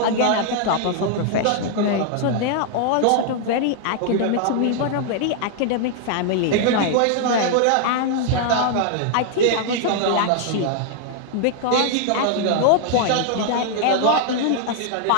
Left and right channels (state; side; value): different; both; correlation 0.00